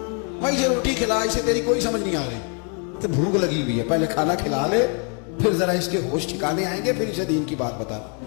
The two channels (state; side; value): quieter; right; 39.8 dB